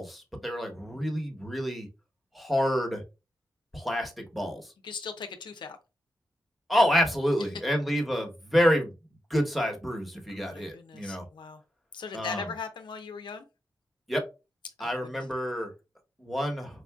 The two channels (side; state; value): both; normal; correlation 0.86